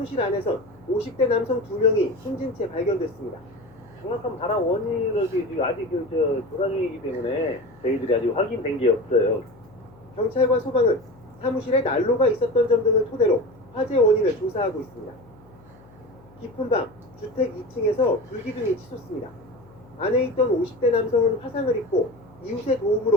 안에선 50대 남성 2명이 숨진 채 발견됐습니다. 정확한 발화 원인을 지금 아직 조사 중이기 때문에 저희들이 아직 확인된 게 없어요. 경찰과 소방은 사무실에 난로가 있었던 점 등을 토대로 화재 원인을 조사하고 있습니다. 깊은 밤 주택 2층에서 불기둥이 치솟습니다. 안에 있던 50대 남성은 화상을 입고 이웃의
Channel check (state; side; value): noise; left; hum, 25 dB below the sound